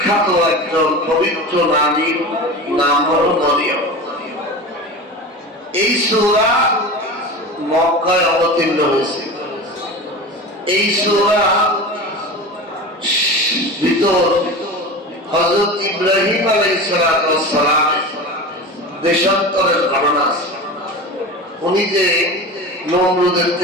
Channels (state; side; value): normal; both; correlation 0.30